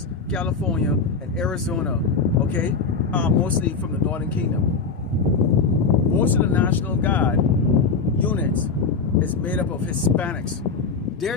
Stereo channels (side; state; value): right; quieter; 4.8 dB